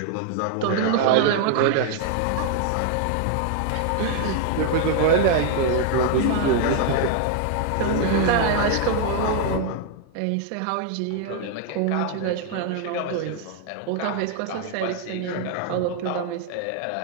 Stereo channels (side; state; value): both; different; correlation 0.00